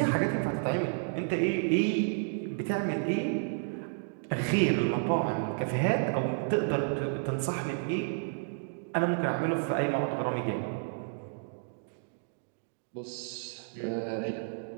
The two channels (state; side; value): silent; left; digital silence